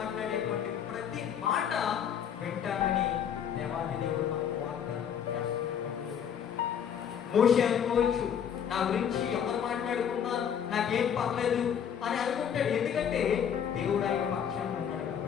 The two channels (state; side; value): quieter; right; 8.4 dB